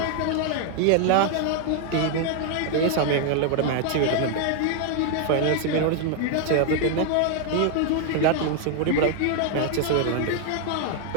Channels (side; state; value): both; different; correlation 0.00